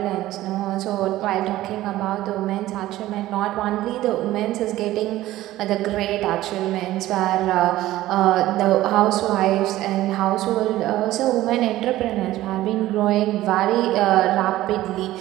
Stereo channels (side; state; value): left; quieter; 15.5 dB